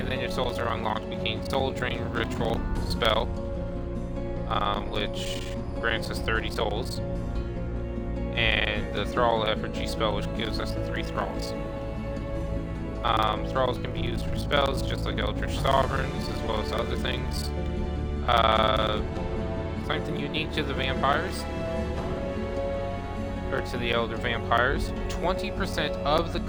then if souls are unlocked, we gain Soul Drain Ritual spell, which grants us 30 souls. And the Thrall Effigy spell, which gives us 3 Thralls. Thralls can be used for spells, just like Eldritch Sovereigns, as well as other things. Something unique to the vampires, or to the Elder Vampires, 20% of the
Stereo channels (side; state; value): both; identical; correlation 1.00